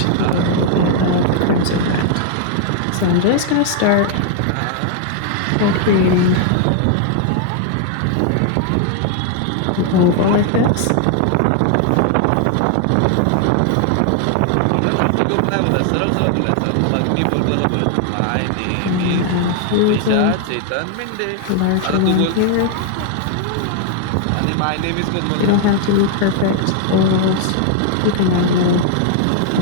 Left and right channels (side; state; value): both; different; correlation 0.00